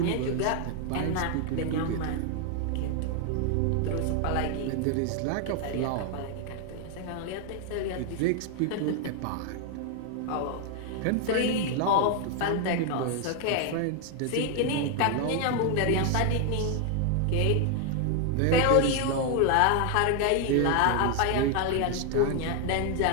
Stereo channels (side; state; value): both; different; correlation 0.00